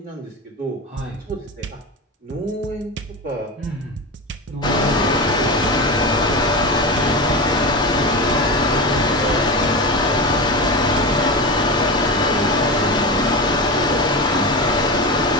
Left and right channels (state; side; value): normal; both; correlation 0.22